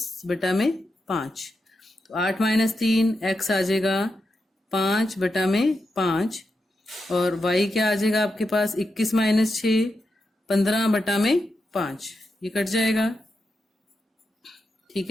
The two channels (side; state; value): both; normal; correlation 0.87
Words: बटा में 5। तो 8 -3 x आ जाएगा 5 बटा में 5 और y क्या आ जाएगा आपके पास, 21 -6 15 बटा में 5, ये कट जाएगा, ठीक